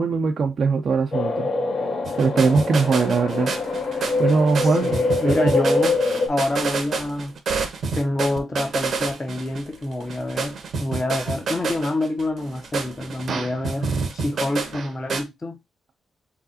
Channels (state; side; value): normal; both; correlation 0.84